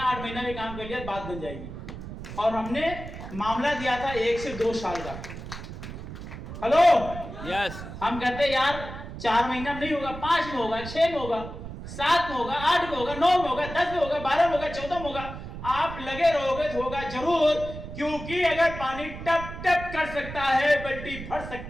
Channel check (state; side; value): noise; right; rumble, 10 dB below the sound